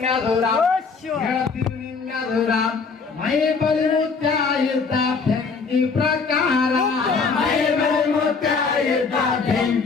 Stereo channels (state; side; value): quieter; right; 5.0 dB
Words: ಹೇಳ್ತೀವಿ ನಿಮ್ಮೆದುರ ಮೈ ಬಲಿ ಮುತ್ಯ ಇದ್ದ ಬೆಂಕಿ ಪ್ರಕಾರ ಮೈ ಬಲಿ ಮುತ್ಯ ಇದ್ದ